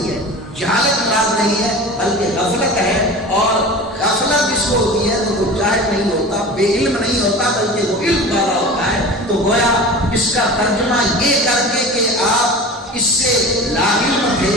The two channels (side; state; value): both; normal; correlation 0.35